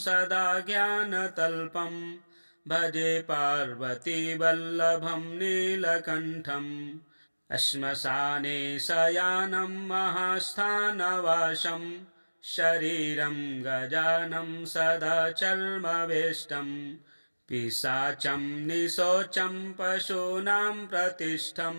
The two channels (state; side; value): inverted; both; correlation -1.00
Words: सदा ज्ञानतल्पं भजे पार्वतीवल्लभं नीलकण्ठम् श्मशाने शयानं महास्थानवासं शरीरं गजानं सदा चर्मवेष्टं पिशाचं निशोचं पशूनां प्रतिष्ठं